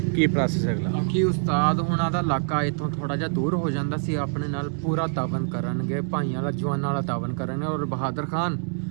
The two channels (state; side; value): silent; left; digital silence